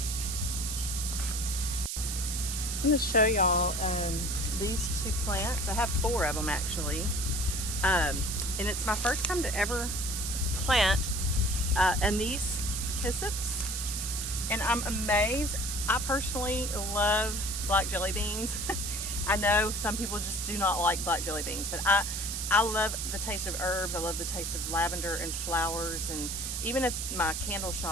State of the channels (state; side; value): noise; right; hiss, 3 dB below the sound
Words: I'm going to show y'all these two plants. I have 4 of them actually, and it's my first time to ever plant anise hyssopus, and I'm amazed. I personally love black jelly beans. I know some people just do not like black jelly beans, but I love the taste of herbs. I love the taste of lavender and flowers, and even at my candle